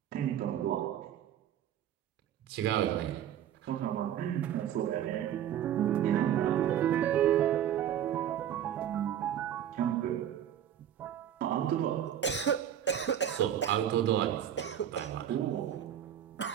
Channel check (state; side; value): quieter; left; 10.3 dB